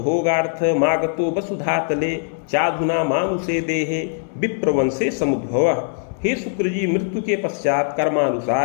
मागतो वसुधातले चाधुना मानुषे देहे विप्रवंशे समुद्भवः। हे शुक्र जी, मृत्यु के पश्चात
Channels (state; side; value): silent; right; 65 dB below the other